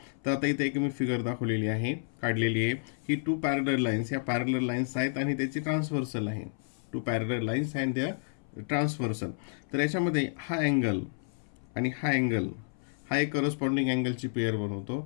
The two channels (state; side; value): silent; right; 58 dB below the other